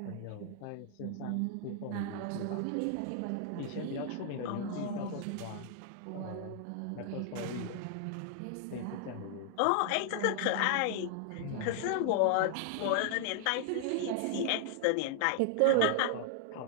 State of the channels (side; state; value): both; different; correlation 0.00